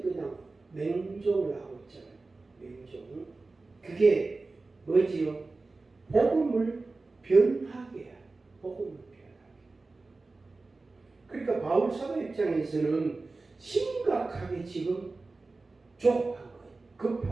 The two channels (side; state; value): left; quieter; 3.6 dB